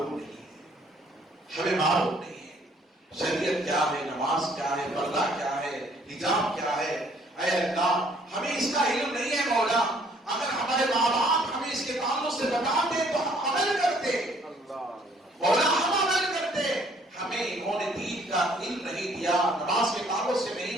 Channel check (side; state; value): both; normal; correlation 0.62